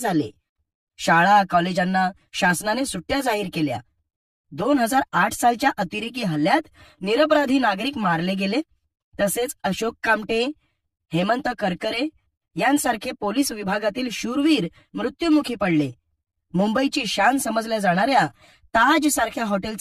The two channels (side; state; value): both; identical; correlation 1.00